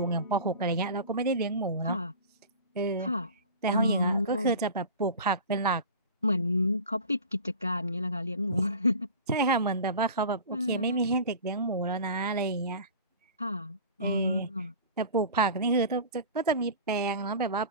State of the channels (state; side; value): inverted; both; correlation -0.36